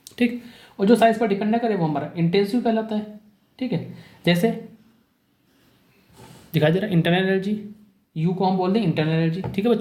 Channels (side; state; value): both; identical; correlation 1.00